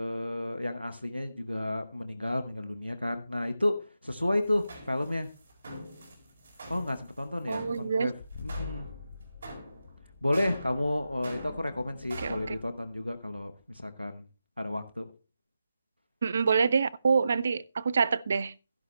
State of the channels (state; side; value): inverted; both; correlation -0.90